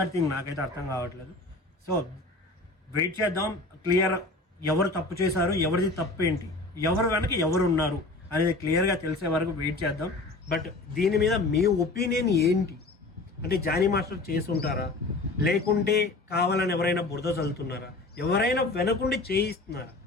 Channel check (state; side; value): quieter; right; 3.1 dB